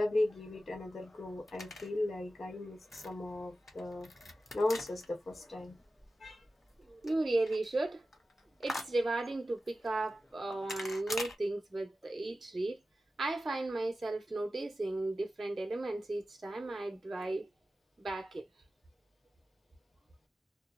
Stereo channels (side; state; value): both; normal; correlation 0.94